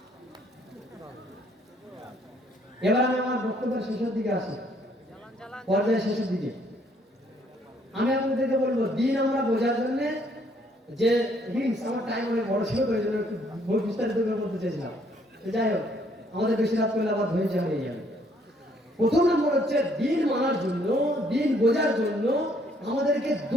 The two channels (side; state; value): both; normal; correlation 0.66